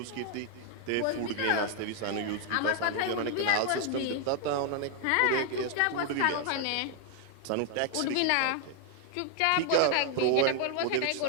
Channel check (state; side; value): different; both; correlation 0.00